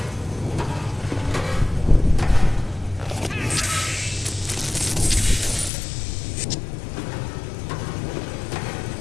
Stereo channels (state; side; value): drops out; right; at 5.7 s